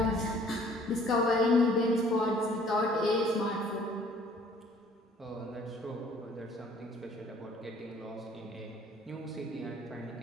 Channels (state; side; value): normal; both; correlation 0.56